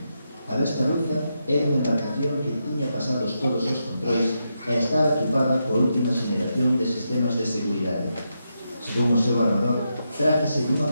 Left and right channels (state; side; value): inverted; both; correlation -0.84